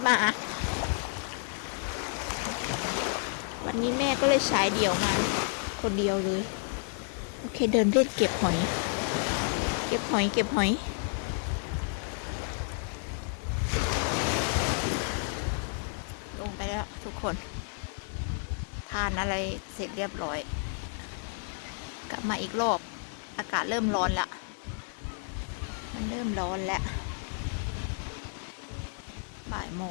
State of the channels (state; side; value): silent; right; 57 dB below the other